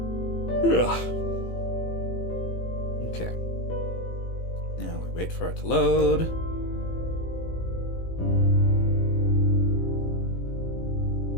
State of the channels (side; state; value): right; late; 18 ms